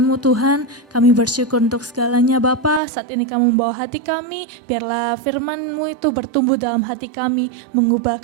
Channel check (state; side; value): drops out; left; at 2.8 s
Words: Tuhan. Kami bersyukur untuk segalanya Bapa. Saat ini Kamu membawa hati kami, biarlah firman-Mu itu bertumbuh dalam hati kami,